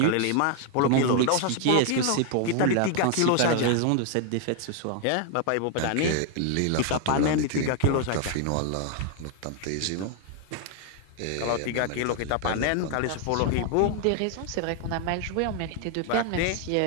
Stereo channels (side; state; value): both; different; correlation 0.00